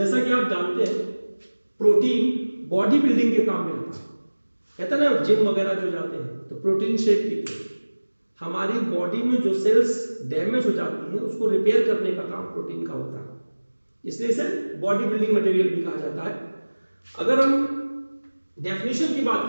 कि आप जानते हैं, प्रोटीन बॉडी बिल्डिंग के काम में आता है। कहते हैं ना, जिम वगैरह जो जाते हैं तो प्रोटीन शेक पीते हैं। हमारी बॉडी में जो सेल्स डैमेज हो जाती हैं उसको रिपेयर करने का काम प्रोटीन का होता है, इसलिए इसे बॉडी बिल्डिंग मटेरियल भी कहा जाता है। अगर हम डेफिनेशन की बात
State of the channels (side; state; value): both; inverted; correlation -1.00